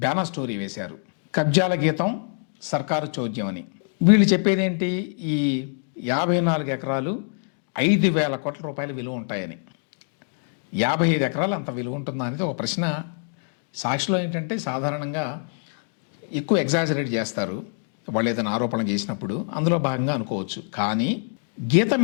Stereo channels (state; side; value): silent; right; 61 dB below the other